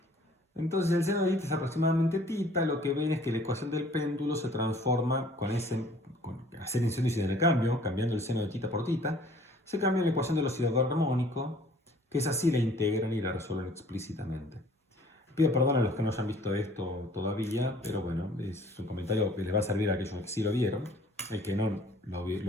Entonces el seno de tita es aproximadamente tita, lo que ven es que la ecuación del péndulo se transforma con hacer incendio de cambio, cambiando el seno de tita por tita, se cambia la ecuación del oscilador armónico, que es así, la integran y la resuelven explícitamente. Pido perdón a los que no hayan visto esto todavía, pero bueno, es un comentario que les va a servir a aquellos que sí lo vieron, el que no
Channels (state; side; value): normal; both; correlation 0.54